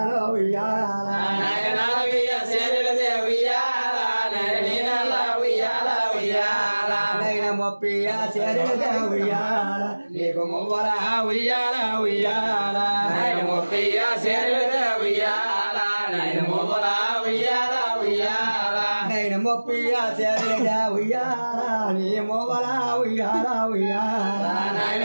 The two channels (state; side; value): inverted; both; correlation -1.00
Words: ఉయ్యాల నైన నలభై ఆశర్యల దేవయ్యాల నైన నీ నల్ల ఉయ్యాల ఉయ్యాల నైన ముప్పై ఆశర్యల దేవయ్యాల నీకు మువ్వల ఉయ్యాల ఉయ్యాల నైన ముప్పై ఆశర్యల దేవయ్యాల నైన మువ్వల ఉయ్యాల ఉయ్యాల నైన ముప్పై ఆశర్యల దేవయ్యాల నీ మువ్వల ఉయ్యాల ఉయ్యాల నైన